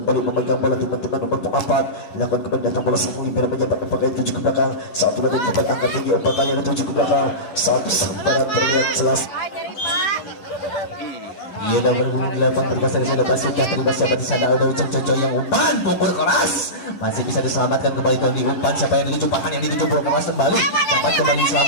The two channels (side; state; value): right; late; 11 ms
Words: memegang bola teman-teman nomor 4. Lakukan kembali datang bola sang Libero menyambut umpan itu juga belakang. Satu lagi kembali angkat tinggi umpan kali itu juga belakang. Satu sementara terlihat jelas. Ia dah berbunyi di lapang berkasar sudah sudah terlibat siapa di sana udah Ujang Jojo yang umpan pukul keras masih bisa diselamatkan kembali Doni umpan siapa yang dituju Pahan yang dituju pukul keras kembali dapat kembali